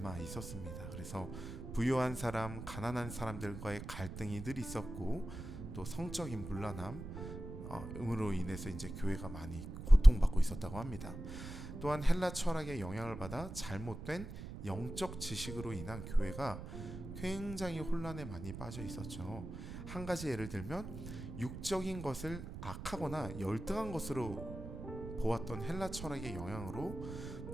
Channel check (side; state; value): right; noise; rumble, 9 dB below the sound